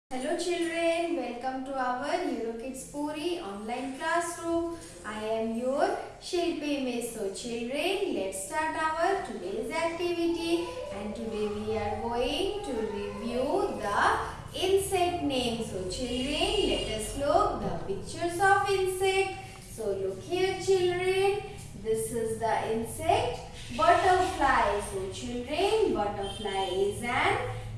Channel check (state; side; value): identical; both; correlation 1.00